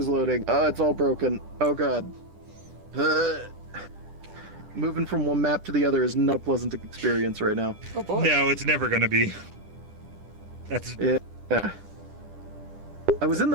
loading. Oh, it's all broken. Oh god. Moving from one map to the other is not a pleasant experience right now. Oh boy. No, it's never gonna be. That's yeah. I was in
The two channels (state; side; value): late; left; 10 ms